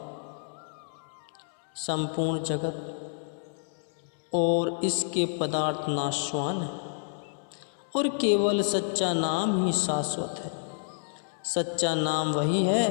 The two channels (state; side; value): silent; right; 59 dB below the other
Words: संपूर्ण जगत और इसके पदार्थ नाशवान है और केवल सच्चा नाम ही शाश्वत है। सच्चा नाम वही है